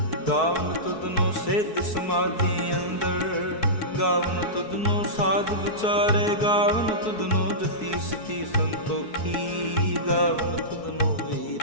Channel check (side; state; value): right; late; 4.6 ms